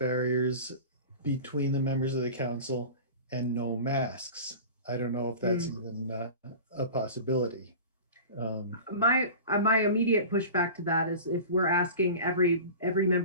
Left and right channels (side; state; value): both; inverted; correlation -0.36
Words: between the members of the council and no masks, I don't know if that's even a possibility. My immediate pushback to that is, if we're asking every